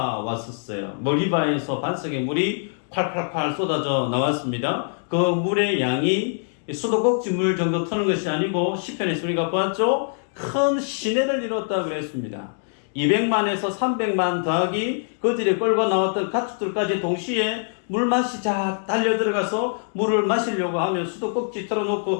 머리바에서 반석에 물이 콸콸콸 쏟아져 나왔습니다. 그 물의 양이 수도꼭지 물 정도 트는 것이 아니고 시편에서 우리가 보았죠. 큰 시내를 이뤘다 그랬습니다. 200만에서 300만 더하기 그들이 끌고 나왔던 가축들까지 동시에 물맛이 쫙 달려 들어가서 물을 마시려고 하면 수도꼭지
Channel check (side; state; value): right; silent; digital silence